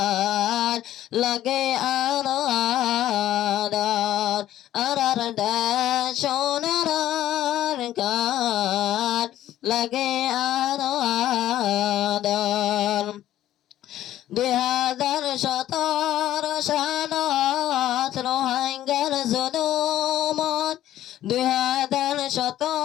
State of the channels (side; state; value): right; quieter; 13.1 dB